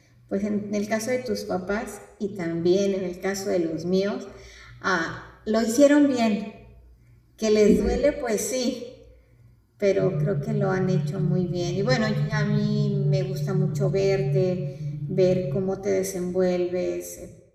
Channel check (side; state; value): both; identical; correlation 1.00